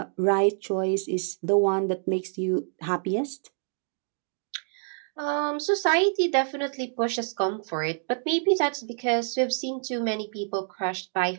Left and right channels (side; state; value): left; silent; 60 dB below the other